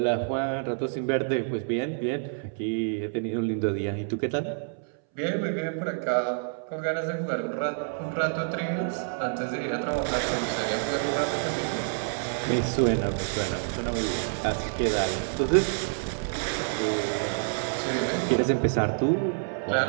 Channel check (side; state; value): left; silent; 59 dB below the other